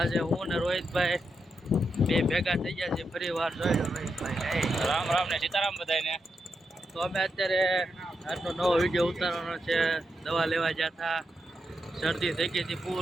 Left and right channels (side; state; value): both; normal; correlation 0.85